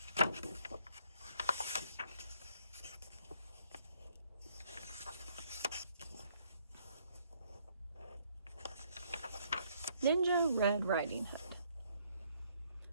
Ninja Red Riding Hood.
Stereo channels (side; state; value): both; inverted; correlation -0.67